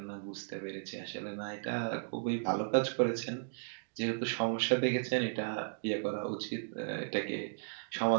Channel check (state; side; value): silent; left; digital silence